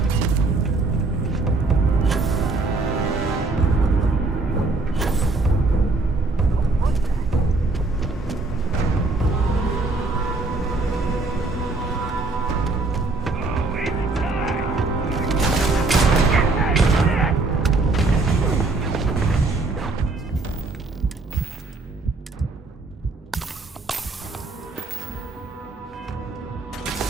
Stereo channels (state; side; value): quieter; left; 3.4 dB